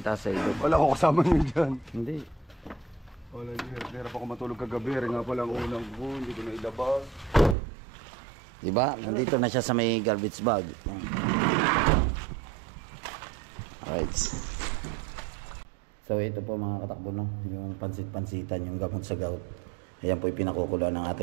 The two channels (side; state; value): left; drops out; at 7.6 s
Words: sa ito. Wala ko kasama nyo dyan. Hindi. Wala nyo. Hirap ako matulog kagabi. Nga pala ang unang ko. Hindi ko na ilabas. Diba? Nandito na siya sa may garbage bag. Alright. So ito po mga katakbo, no? Yung pansit-pansitan, yung gamot sa gout. Ayan po yung pinakukulo ng